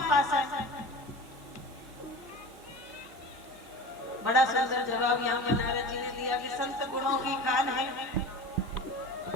पास है। बड़ा सुंदर जवाब यहाँ पर नारद जी ने दिया कि संत गुणों की खान है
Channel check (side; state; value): both; normal; correlation 0.34